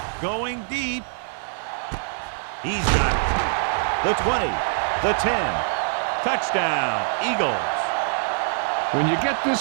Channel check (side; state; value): left; silent; 63 dB below the other